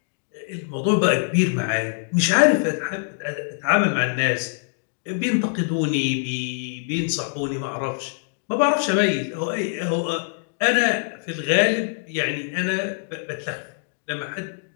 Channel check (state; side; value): silent; right; digital silence